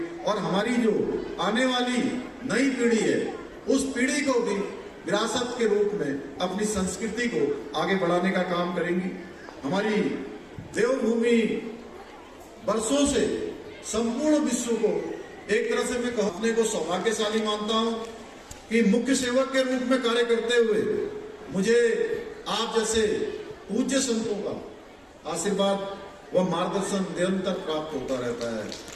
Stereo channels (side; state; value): both; identical; correlation 1.00